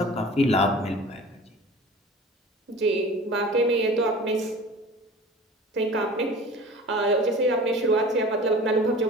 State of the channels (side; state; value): both; normal; correlation 0.41